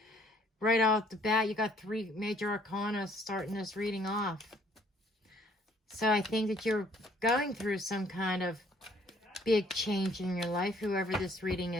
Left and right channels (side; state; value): both; normal; correlation 0.62